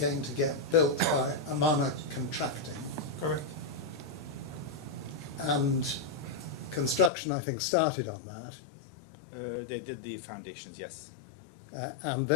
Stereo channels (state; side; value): drops out; right; at 7.1 s